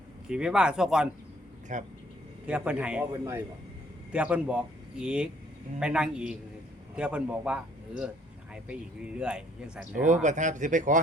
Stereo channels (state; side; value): normal; both; correlation 0.63